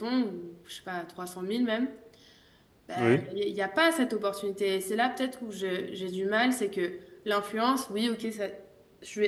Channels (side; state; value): both; identical; correlation 1.00